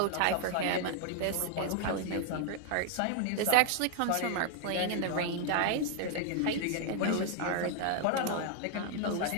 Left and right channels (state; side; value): different; both; correlation 0.00